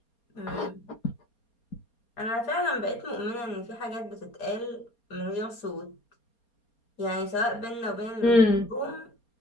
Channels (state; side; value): late; right; 4.3 ms